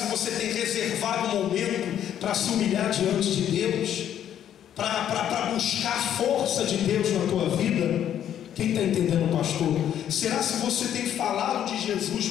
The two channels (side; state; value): right; quieter; 10.3 dB